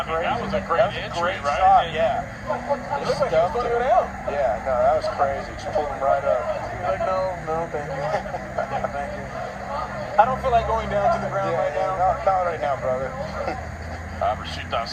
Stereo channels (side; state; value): both; identical; correlation 1.00